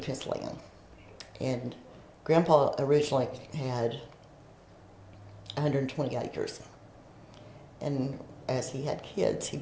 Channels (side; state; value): both; identical; correlation 1.00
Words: his land. And Grandpa originally had 120 acres. And as he had kids,